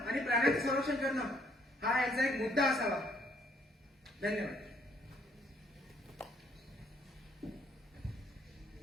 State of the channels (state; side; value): normal; both; correlation 0.66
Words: प्राण्यांचं संरक्षण करणं हा याचा एक मुद्दा असावा. धन्यवाद.